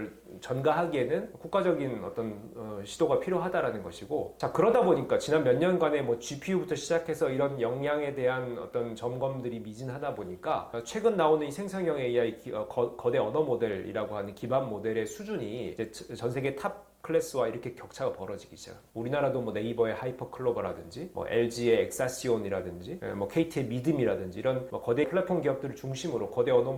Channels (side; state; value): both; identical; correlation 1.00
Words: 전가하기에는 국가적인 어떤 시도가 필요하다라는 것이고, 자 그러다 보니까 지난 몇 년간의 뭐 GPU부터 시작해서 이런 역량에 대한 어떤 점검들이 미진하다 보니까 최근 나오는 이 생성형 AI 거대 언어 모델이라고 하는 기반 모델의 수준이 이제 전 세계 탑 클래스와 이렇게 격차가 벌어지기 시작합니다. 우리나라도 뭐 네이버의 하이퍼클로버라든지 뭐 LG의 엑사시온이라든지 뭐 KT의 미듬이라든지 이런 뭐 거대 플랫폼 기업들을 중심으로 거대 언어